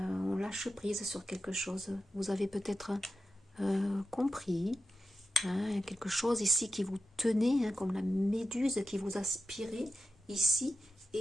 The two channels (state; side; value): normal; both; correlation 0.91